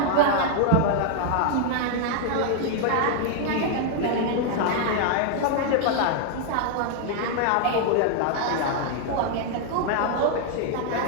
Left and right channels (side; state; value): both; different; correlation 0.00